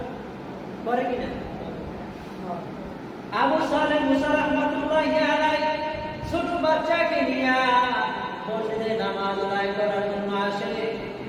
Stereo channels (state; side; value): identical; both; correlation 1.00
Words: করে কিনা? আবু সালেহ মুসা রাহমাতুল্লাহি আলাইহি ছোট বাচ্চাকে নিয়ে মসজিদে নামাজ আদায় করার জন্য আসে।